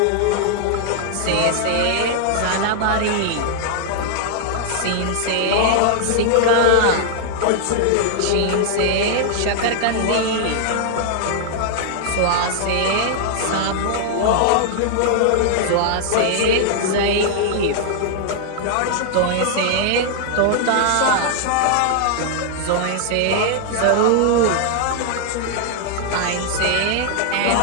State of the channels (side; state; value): both; different; correlation 0.00